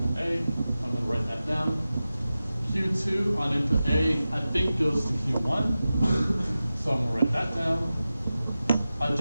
A. I'm going to write that down. Q2 on input A, I think, goes to Q1. So I'm going to write that down. I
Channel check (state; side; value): inverted; both; correlation -0.94